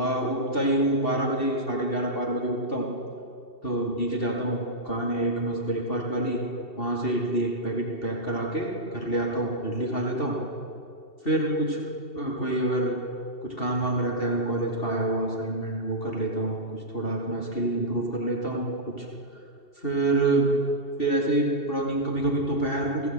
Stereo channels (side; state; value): right; late; 2.7 ms